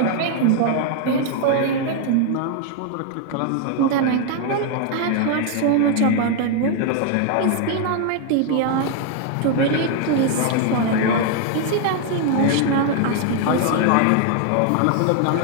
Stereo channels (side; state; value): both; different; correlation 0.00